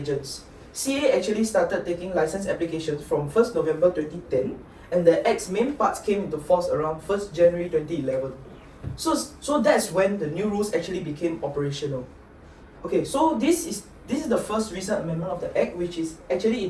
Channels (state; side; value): identical; both; correlation 1.00